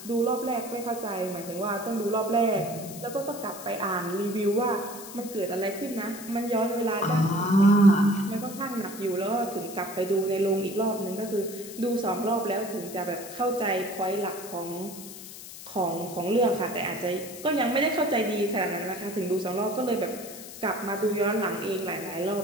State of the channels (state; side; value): noise; left; hiss, 13 dB below the sound